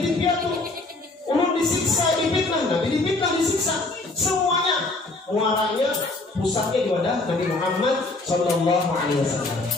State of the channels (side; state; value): right; quieter; 3.1 dB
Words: piatu. Ulun disiksa, difitnah, Nabi difitnah, disiksa. Semuanya muaranya, pusatnya di wadah Nabi Muhammad Sallallahu Alaihi